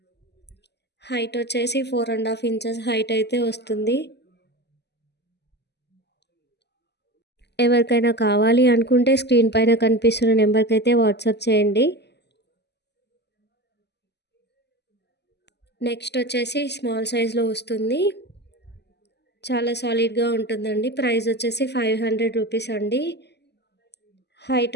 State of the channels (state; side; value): late; right; 0.50 ms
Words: హైట్ వచ్చేసి 4.5 ఇంచెస్ హైట్ అయితే వస్తుంది. ఎవరికైనా కావాలి అనుకుంటే స్క్రీన్ పైన కనిపిస్తున్న నెంబర్కి అయితే వాట్సాప్ చేయండి. నెక్స్ట్ వచ్చేసి స్మాల్ సైజ్లో వస్తుంది. చాలా సాలిడ్గా ఉంటుందండి. ప్రైస్ వచ్చేసి రూ. 500 అండి.